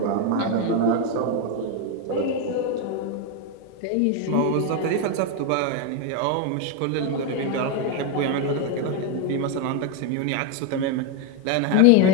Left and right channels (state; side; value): different; both; correlation 0.01